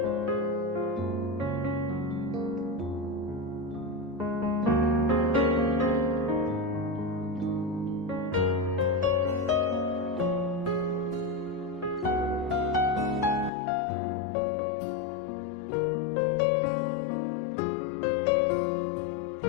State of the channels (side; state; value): right; drops out; at 13.5 s